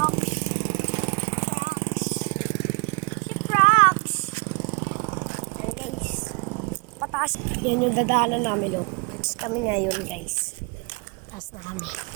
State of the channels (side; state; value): left; quieter; 32.2 dB